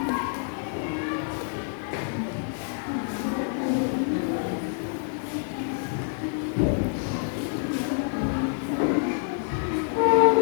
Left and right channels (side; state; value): right; silent; 60 dB below the other